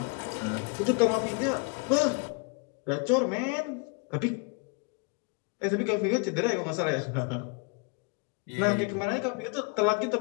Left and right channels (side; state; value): right; quieter; 33.3 dB